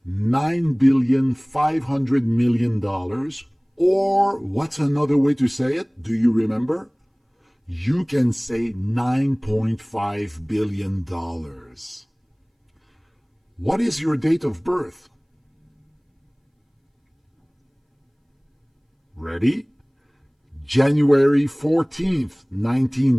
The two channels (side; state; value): both; identical; correlation 1.00